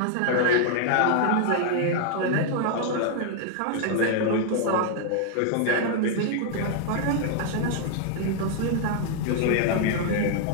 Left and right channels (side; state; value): both; different; correlation 0.00